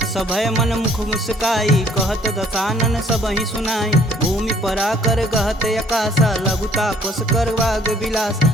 सभय मन मुख मुस्काई, कहत दसानन सबहि सुनाई, भूमि परा कर गहत अकासा, लघुता पस कर वाग विलास,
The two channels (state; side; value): normal; both; correlation 0.59